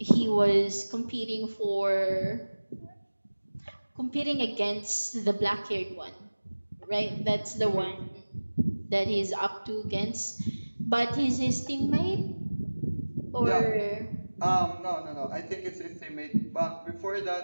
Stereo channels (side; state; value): both; inverted; correlation -1.00